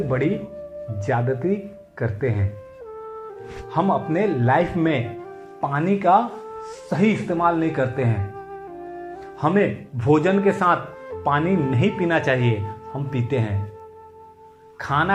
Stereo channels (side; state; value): both; identical; correlation 1.00